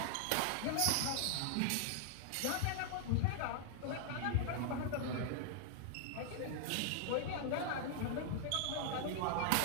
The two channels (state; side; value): different; both; correlation 0.00